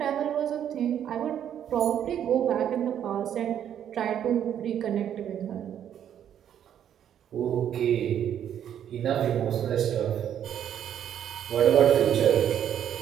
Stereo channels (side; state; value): left; quieter; 9.8 dB